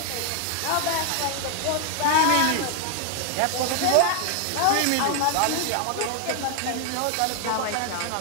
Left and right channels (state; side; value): different; both; correlation 0.00